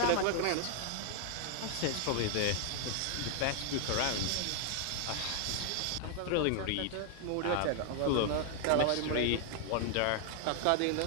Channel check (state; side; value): different; both; correlation 0.00